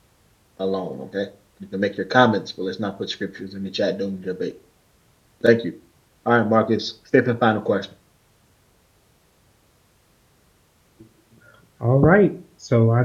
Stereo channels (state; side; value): identical; both; correlation 1.00